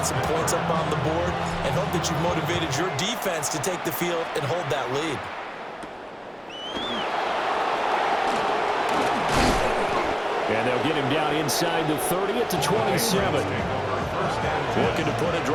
some points up on the board, and hope that you've motivated your defense to take the field and hold that lead. And they'll get him down inside the 30 at the 27. Looking to put a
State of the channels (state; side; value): identical; both; correlation 1.00